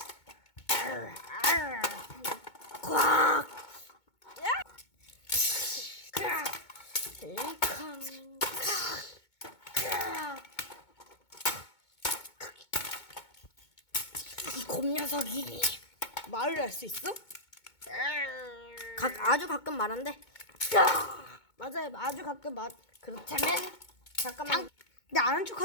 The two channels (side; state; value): right; late; 2.2 ms